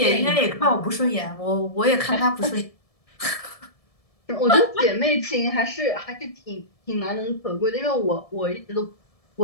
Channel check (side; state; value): right; late; 1.7 ms